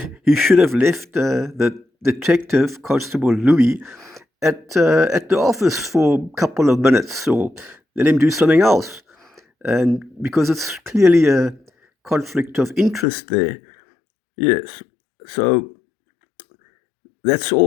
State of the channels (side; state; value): right; drops out; at 13.1 s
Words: should have left the detective, Constable Louis, at the office for a couple of minutes, or let him do something else. And because it's clearly a conflict of interest there. Yes. So that's